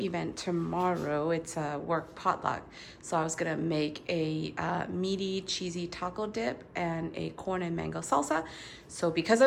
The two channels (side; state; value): both; identical; correlation 1.00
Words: tomorrow. It's a work potluck. So I was gonna make a meaty cheesy taco dip and a corn and mango salsa. So because